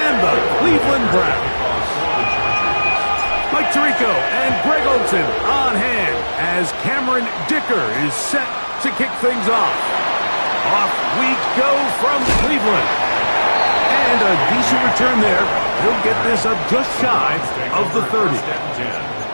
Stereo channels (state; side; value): inverted; both; correlation -1.00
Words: the Cleveland Browns. Mike Tirico and Greg Olsen on hand as Cameron Dicker is set to kick things off. Off we go from Cleveland. And a decent return there. He'll get this up just shy of the 30.